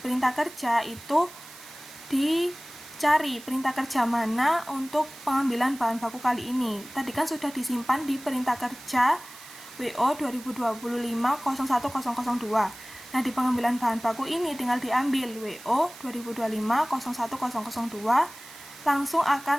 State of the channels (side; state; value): right; noise; hiss, 17 dB below the sound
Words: kerja itu dicari perintah kerja mana untuk pengambilan bahan baku kali ini. Tadi kan sudah disimpan di perintah kerja WO 2025-01002. Nah, di pengambilan bahan baku ini tinggal diambil WO 2025-01002, langsung